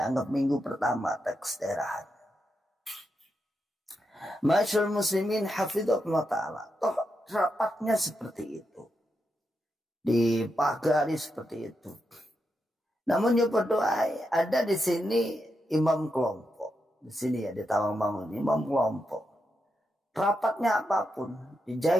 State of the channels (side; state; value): both; normal; correlation 0.85